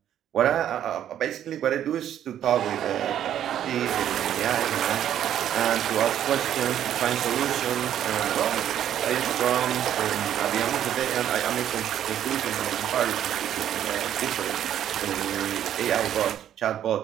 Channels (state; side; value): quieter; left; 10.6 dB